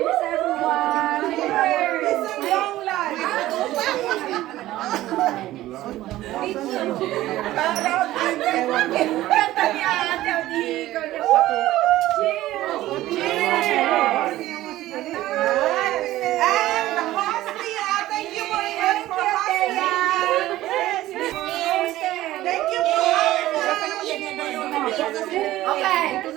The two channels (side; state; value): left; quieter; 15.5 dB